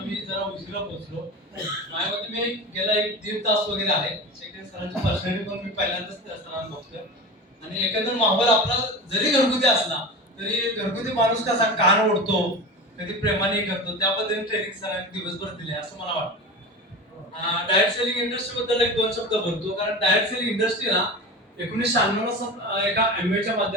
जरा उशिरा पोहोचलो. माझ्या मते मी गेला एक दीड तास वगैरे आहे. सेकंड सरांची पर्सनॅलिटी पण मी पहिल्यांदाच त्या सरांना बघतोय. आणि एकंदर माहोल आपला जरी घरगुती असला तरी घरगुती माणूस कसा कान ओढतो, कधी प्रेमाने करतो, त्या पद्धतीने ट्रेनिंग सरांनी दिवसभर दिले असं मला वाटतं. डायरेक्ट सेलिंग इंडस्ट्री बद्दल एक दोन शब्द बोलतो, कारण डायरेक्ट सेलिंग इंडस्ट्री ना 1996 एका एमबीएच्या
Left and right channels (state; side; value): normal; both; correlation 0.29